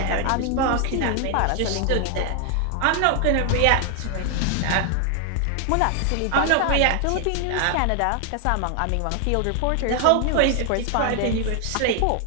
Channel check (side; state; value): both; different; correlation 0.00